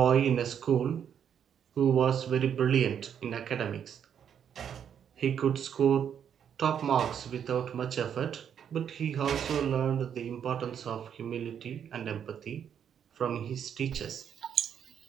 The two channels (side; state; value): left; quieter; 8.5 dB